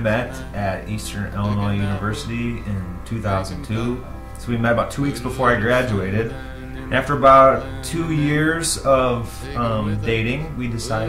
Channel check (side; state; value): both; identical; correlation 1.00